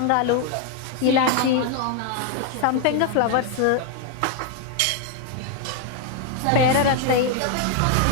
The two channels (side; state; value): both; different; correlation 0.01